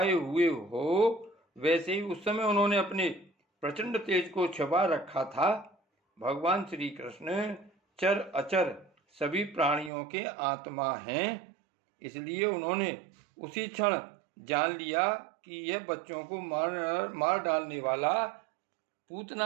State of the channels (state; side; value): drops out; left; at 9.9 s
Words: हुए हो, वैसे ही उस समय उन्होंने अपने प्रचंड तेज को छुपा रखा था। भगवान श्री कृष्ण चर अचर सभी प्राणियों के आत्मा हैं, इसलिए उन्होंने उसी क्षण जान लिया कि यह बच्चों को मार डालने वाला